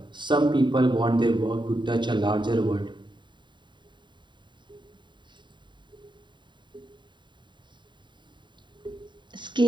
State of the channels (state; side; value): late; left; 0.23 ms